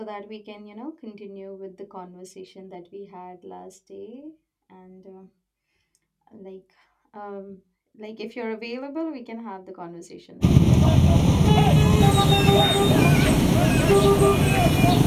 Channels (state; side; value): identical; both; correlation 1.00